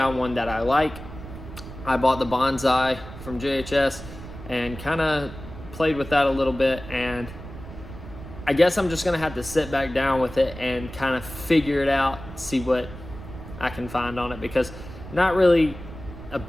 one that I like. I bought the Bonsai from JHS and kind of played with that a little bit, and I guess I'm just gonna have to sit back down with it and kind of figure it out, see what I can find on it, because not really a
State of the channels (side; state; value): right; noise; rumble, 13 dB below the sound